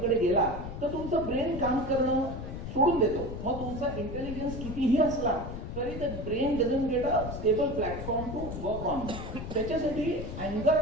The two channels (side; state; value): left; noise; rumble, 8 dB below the sound